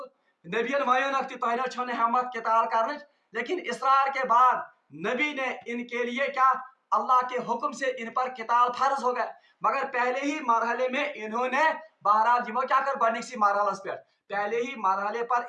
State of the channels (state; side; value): identical; both; correlation 1.00